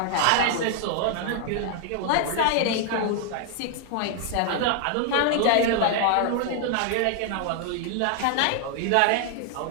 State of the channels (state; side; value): different; both; correlation 0.00